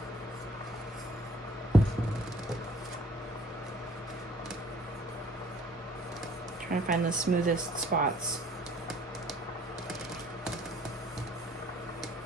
Trying to find the smoothest spots.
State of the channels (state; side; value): normal; both; correlation 0.56